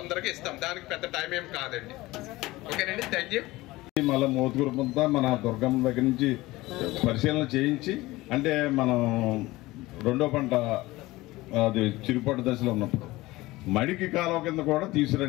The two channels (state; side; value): quieter; right; 19.3 dB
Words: ఇస్తాం. దానికి పెద్ద టైం ఏం కాదండి. ఓకేనండి, థ్యాంక్ యూ. మళ్ళీ మోతుగురు మన దుర్గమ్మ దగ్గర నుంచి పరిశీలన చేయించి అంటే మనం రెండో పంట అది చిరుపట్టు దశలో ఉన్నప్పుడు మడికి కాలువ కింద కూడా